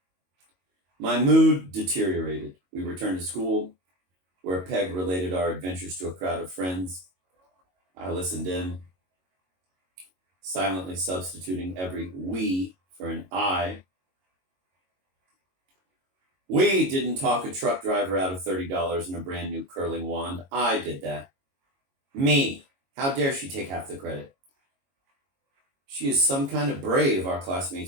My mood deteriorated. We returned to school, where Peg related our adventures to a crowd of friends. I listened in, silently substituting every we for an I. We didn't talk a truck driver out of $30 and a brand new curling wand. I did that. Me. How dare she take half the credit? She is some kind of brave, our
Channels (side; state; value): left; late; 22 ms